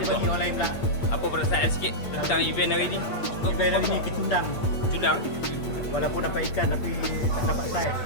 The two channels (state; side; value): late; right; 8.6 ms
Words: Orang lain pula. Apa perasaan sikit tentang event hari ni? Event hari ni kecundang. Kecundang? Walaupun dapat ikan tapi tak dapat saiz.